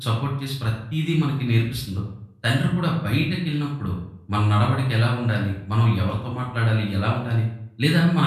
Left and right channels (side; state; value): both; identical; correlation 1.00